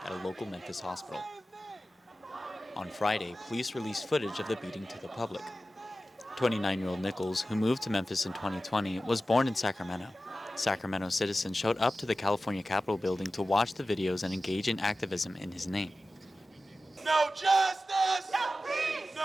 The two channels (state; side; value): normal; both; correlation 0.94